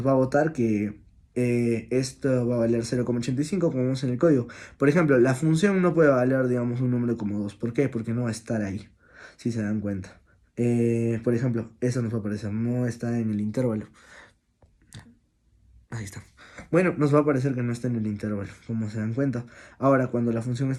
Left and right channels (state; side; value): identical; both; correlation 1.00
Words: va a botar que esto va a valer 0,85 como vemos en el código. Por ejemplo, la función no puede valer, digamos, un número como 2. ¿Por qué? Porque no va a estar ahí, si se dan cuenta. Por ejemplo, eso nos va a aparecer, no está en el intervalo. Ahí está. Bueno, nos va a parecer que no está en el intervalo, como se dan cuenta. Ahora, cuando la función